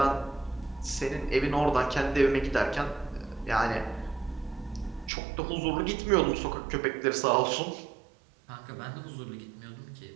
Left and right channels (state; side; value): drops out; left; at 5.1 s